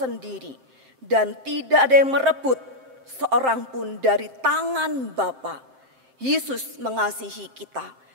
dan tidak ada yang merebut seorang pun dari tangan Bapa. Yesus mengasihi kita,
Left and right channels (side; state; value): left; late; 7.7 ms